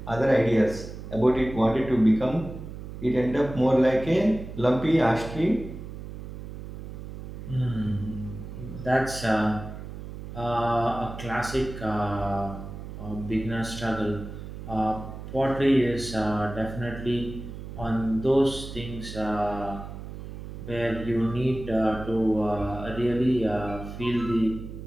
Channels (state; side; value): noise; right; hum, 11 dB below the sound